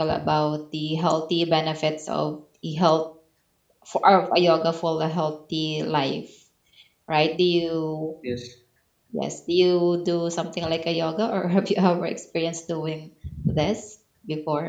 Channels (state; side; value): identical; both; correlation 1.00